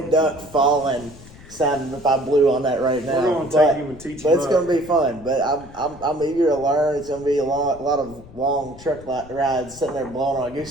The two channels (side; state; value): left; noise; rumble, 19 dB below the sound